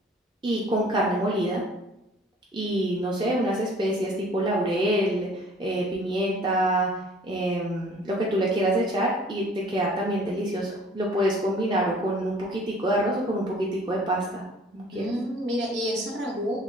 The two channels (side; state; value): both; normal; correlation 0.52